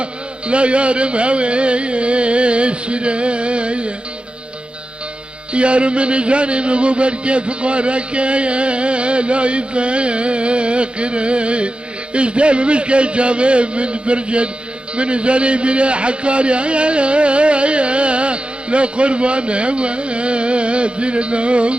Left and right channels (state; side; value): late; left; 0.056 ms